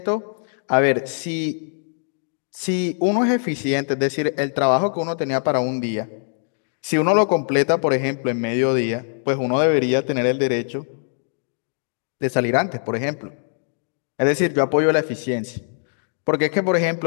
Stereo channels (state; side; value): silent; right; digital silence